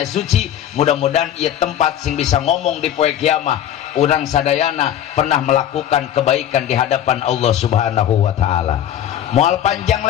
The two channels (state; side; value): quieter; right; 10.7 dB